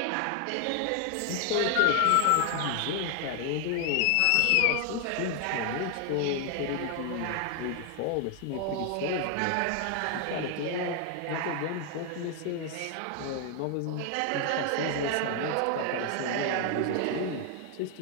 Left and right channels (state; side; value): different; both; correlation 0.00